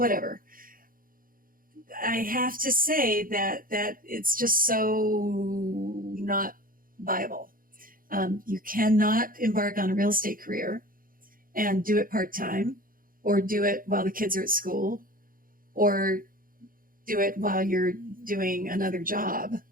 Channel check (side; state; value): left; late; 0.41 ms